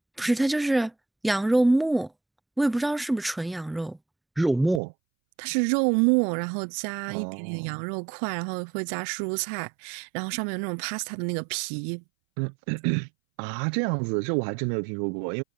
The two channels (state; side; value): drops out; left; at 4.8 s